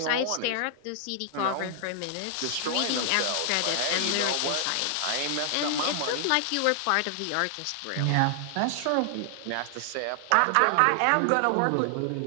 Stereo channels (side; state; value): both; different; correlation 0.00